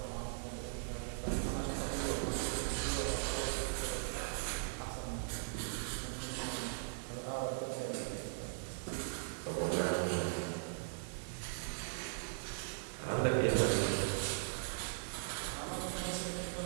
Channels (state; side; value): silent; left; digital silence